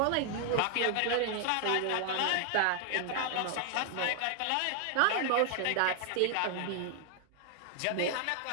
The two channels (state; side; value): different; both; correlation 0.00